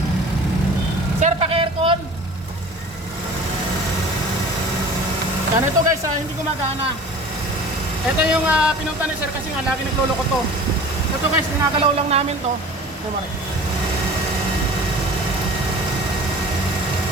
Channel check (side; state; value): both; normal; correlation 0.41